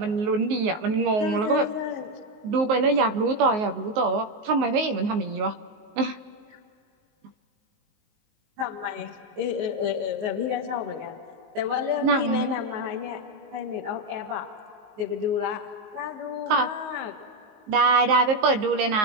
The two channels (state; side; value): late; left; 19 ms